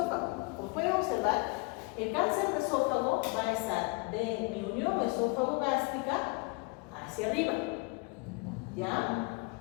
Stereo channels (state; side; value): quieter; right; 28.5 dB